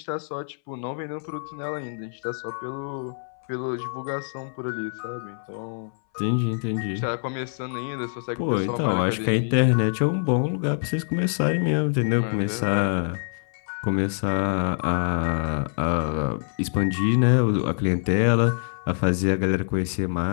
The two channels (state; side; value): silent; right; 62 dB below the other